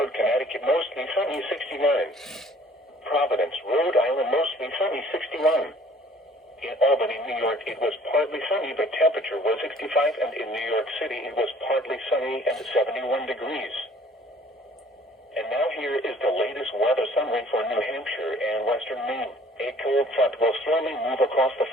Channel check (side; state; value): both; normal; correlation 0.55